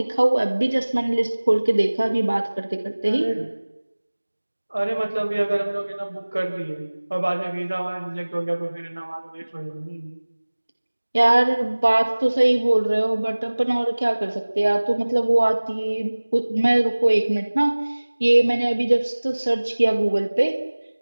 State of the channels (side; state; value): both; inverted; correlation -1.00